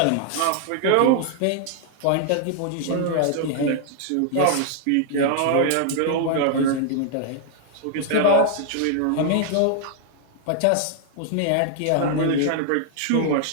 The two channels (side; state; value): both; different; correlation -0.01